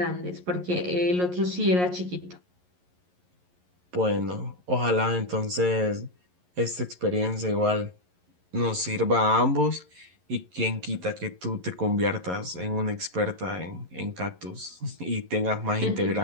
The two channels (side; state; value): left; late; 11 ms